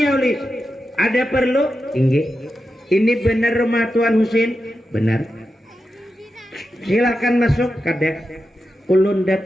oleh ada perlu? Ini benar rumah Tuan Husin? Benar. Silakan masuk. Kada ulun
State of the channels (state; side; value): normal; both; correlation 0.89